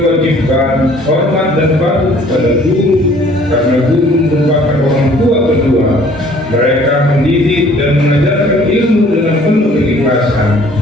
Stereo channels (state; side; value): normal; both; correlation 0.56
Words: hormat dan patuh kepada guru, karena guru merupakan orang tua kedua. Mereka mendidik dan mengajarkan ilmu dengan penuh keikhlasan.